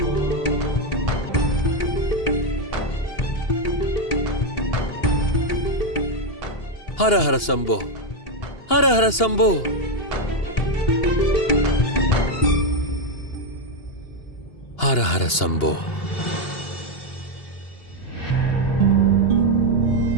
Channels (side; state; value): right; late; 2.8 ms